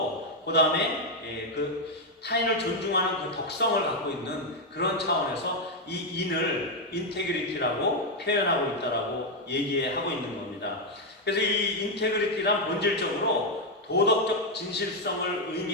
그 다음에 타인을 존중하는 그 덕성을 갖고 있는 그런 차원에서 이 인을 인테그리티라고 표현하고 있다라고 얘기하고 있는 겁니다. 그래서 이 인테그리티란 본질적으로 도덕적 진실성을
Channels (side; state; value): both; normal; correlation 0.03